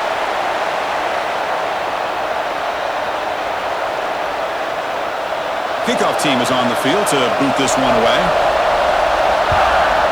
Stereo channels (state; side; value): noise; right; hiss, 28 dB below the sound